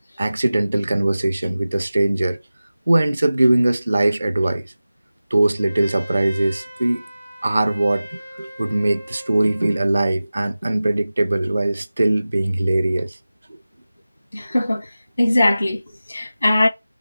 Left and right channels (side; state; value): both; inverted; correlation -0.96